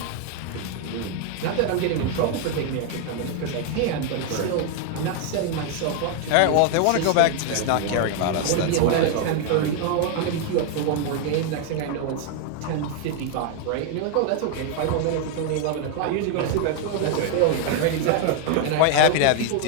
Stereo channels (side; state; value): both; different; correlation 0.00